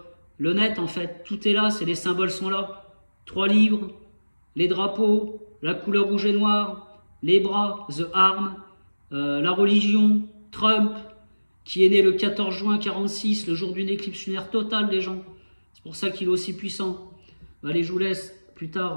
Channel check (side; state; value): both; inverted; correlation -1.00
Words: le net en fait. Tout est là, les symboles sont là. 3 livres, les drapeaux, la couleur rouge et noire, les bras, the arm, la religion, Trump, qui est né le 14 juin 46, le jour d'une éclipse lunaire totale, les gens. C'est pour ça qu'il est aussi puissant. Allez, je vous laisse. Plus